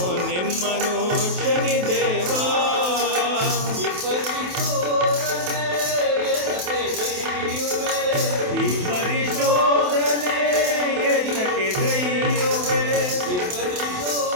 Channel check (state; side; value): late; left; 28 ms